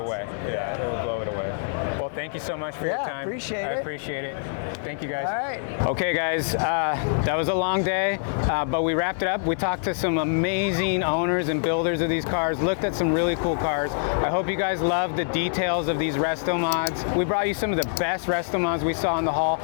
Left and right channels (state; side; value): silent; right; digital silence